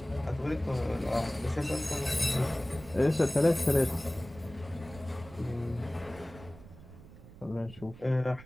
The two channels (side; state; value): right; noise; rumble, 18 dB below the sound